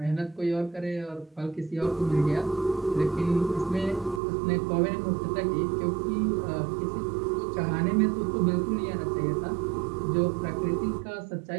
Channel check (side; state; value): left; drops out; at 4.2 s